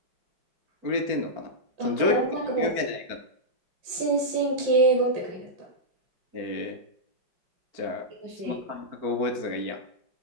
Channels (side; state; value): left; late; 4.5 ms